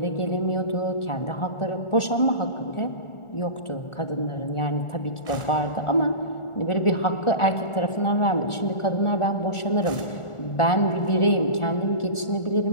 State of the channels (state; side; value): late; right; 1.4 ms